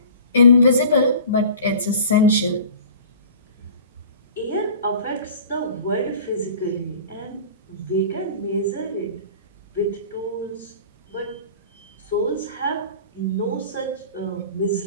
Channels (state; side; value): inverted; both; correlation -0.43